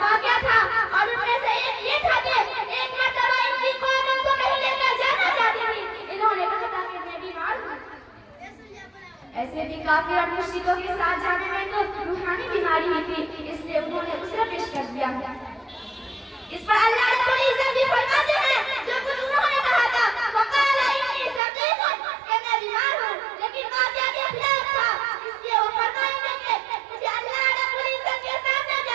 वाक़या था और उनमें से एक ये था कि एक काफिर और मुश्रिकों के साथ जाने में तो रूहानी बीमारी ही थी, इसलिए उन्होंने उसरा पेश कर दिया। इस पर अल्लाह रब्बुल इज्जत भी फरमाते हैं, जो कुछ उन्होंने कहा था, वक़ाला इन्नी सक़ीमुन, कि मैं बीमार हूँ, लेकिन वाक़या के खिलाफ था, इसलिए वो फरमाएंगे कि मुझे अल्लाह रब्बुल इज्जत के सामने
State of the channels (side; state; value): left; drops out; at 21.4 s